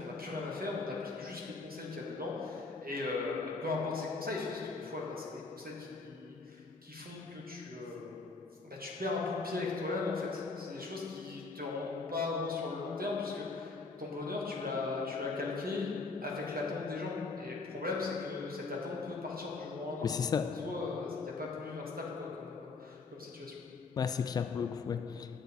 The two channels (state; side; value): quieter; right; 4.0 dB